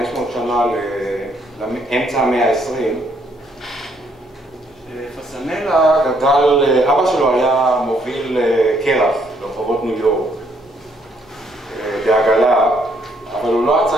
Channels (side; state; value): both; normal; correlation 0.70